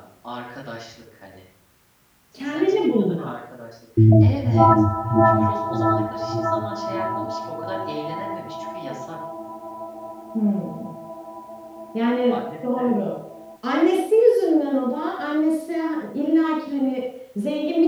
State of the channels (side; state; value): both; identical; correlation 1.00